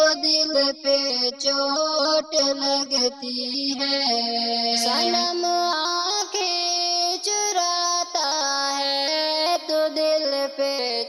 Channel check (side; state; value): both; identical; correlation 1.00